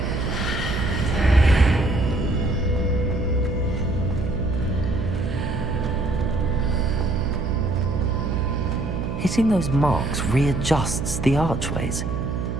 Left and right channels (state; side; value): noise; right; hum, 3 dB below the sound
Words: Hitting those marks readjusts the archways.